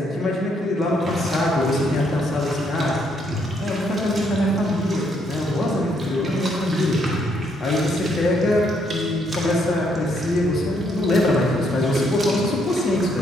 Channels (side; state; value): both; normal; correlation 0.72